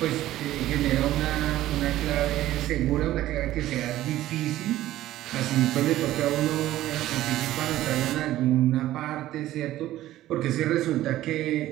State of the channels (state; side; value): quieter; left; 14.5 dB